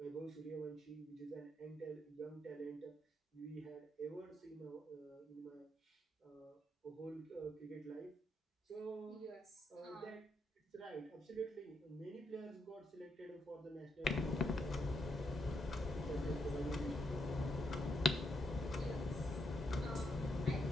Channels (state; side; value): normal; both; correlation 0.79